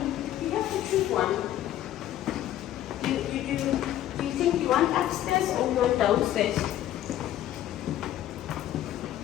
You have to choose one. Do you think you want upstairs or you want downstairs?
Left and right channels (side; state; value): right; quieter; 12.6 dB